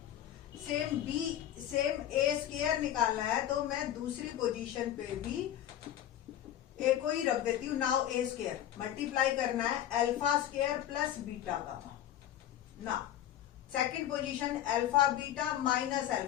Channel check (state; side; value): quieter; right; 11.6 dB